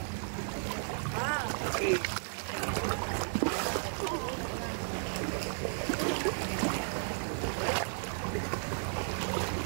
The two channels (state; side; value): silent; left; digital silence